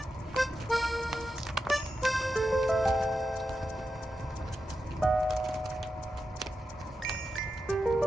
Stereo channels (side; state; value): both; normal; correlation 0.89